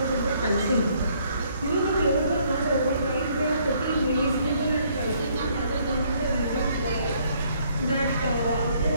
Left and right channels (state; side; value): inverted; both; correlation -0.66